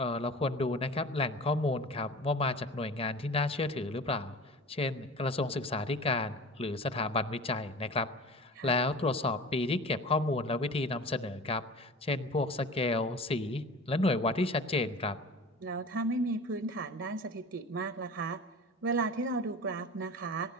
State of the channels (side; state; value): both; normal; correlation 0.38